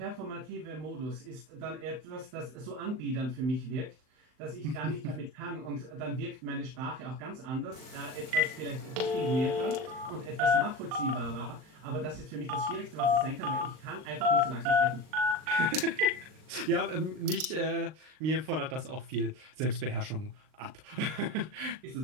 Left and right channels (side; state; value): left; late; 39 ms